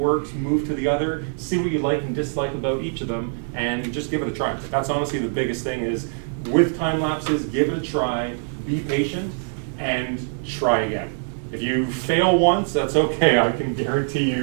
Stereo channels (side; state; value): left; silent; 61 dB below the other